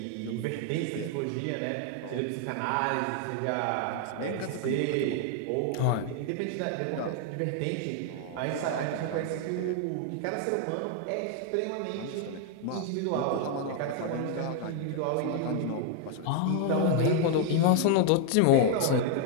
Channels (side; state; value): both; different; correlation 0.00